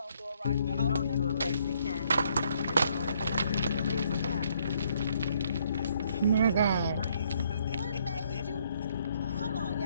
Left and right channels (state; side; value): inverted; both; correlation -0.69